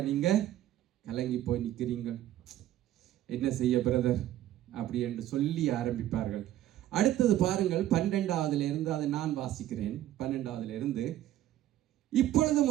நீங்கள் கலங்கி போய் நிற்கிறீங்க. என்ன செய்ய பிரதர் அப்படி என்று சொல்லி ஆரம்பிப்பார்கள். அடுத்தது பாருங்கள், 12வது இருந்து, அதை நான் வாசிக்கிறேன். 12வது இருந்து,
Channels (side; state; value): left; quieter; 13.0 dB